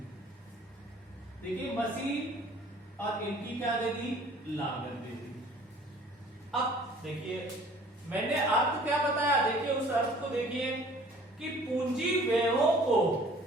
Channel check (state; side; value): normal; both; correlation 0.52